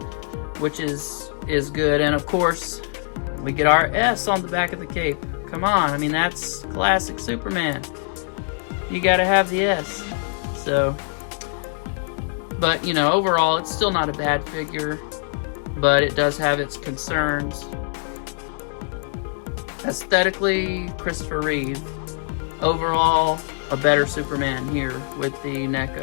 which is good. And of course, we get our S on the back of the cape. Come on, I mean, that's classic Superman. You gotta have the S. So, but you know, overall, it's still not a bad figure, but it does have its concerns. Aesthetically, Christopher Reeve. Overall, a better Superman here with the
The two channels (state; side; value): silent; right; 63 dB below the other